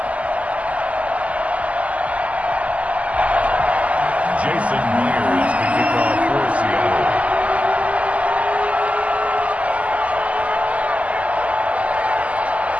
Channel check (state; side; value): late; left; 0.068 ms